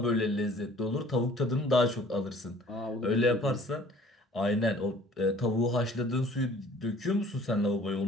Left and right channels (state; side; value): normal; both; correlation 0.53